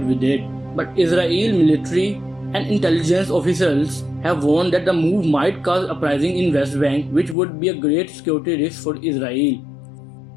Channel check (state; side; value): drops out; right; at 7.4 s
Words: with it. But Israel military and intelligence officials have warned that the move might cause uprising in West Bank, which would be a great security risk for Israel.